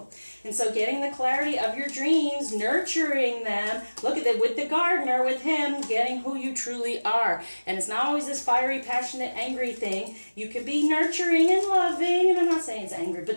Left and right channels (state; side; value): inverted; both; correlation -1.00